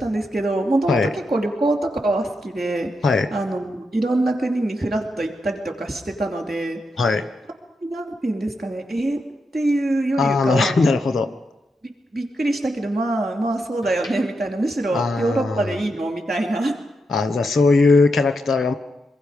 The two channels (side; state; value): both; normal; correlation 0.85